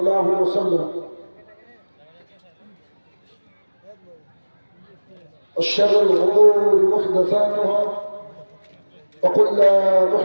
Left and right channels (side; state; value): both; inverted; correlation -1.00